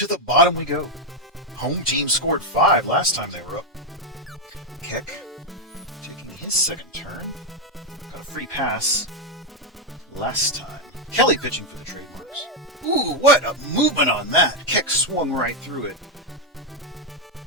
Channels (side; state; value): both; normal; correlation 0.03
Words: the bottom we go. Home team scored 5 last time they were up. Keck taking his second turn. Got a free pass last time. Kelly pitching for the trademarks. Ooh, what a movement on that. Keck swung right through it.